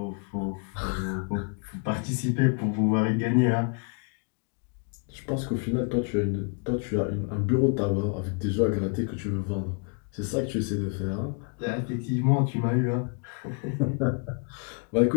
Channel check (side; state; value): right; quieter; 37.3 dB